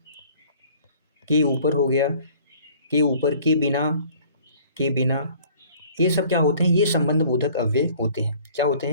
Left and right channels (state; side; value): inverted; both; correlation -0.53